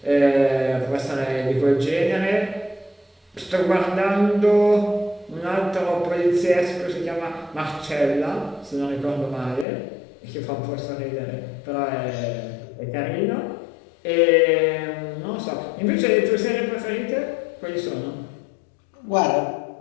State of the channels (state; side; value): drops out; right; at 9.7 s